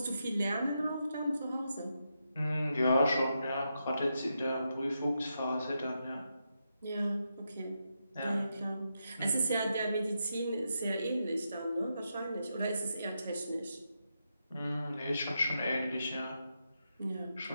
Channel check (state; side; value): inverted; both; correlation -0.84